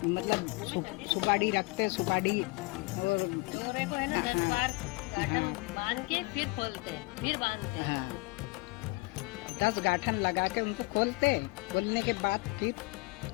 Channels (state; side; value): quieter; right; 25.1 dB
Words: मतलब सुपारी रखते, सुपारी और को है ना 10 बार गाठन बांध के फिर खोलते, फिर बांधते। हाँ, 10 गाठन लगा के उनको खोलते, खोलने के बाद फिर